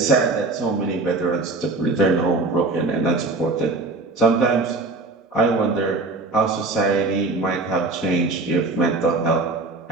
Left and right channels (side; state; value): left; quieter; 3.3 dB